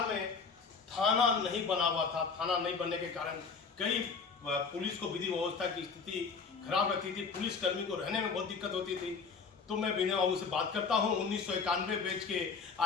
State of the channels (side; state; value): right; quieter; 5.2 dB